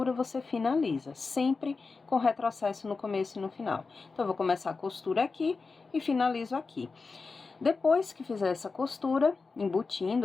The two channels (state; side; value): quieter; right; 4.3 dB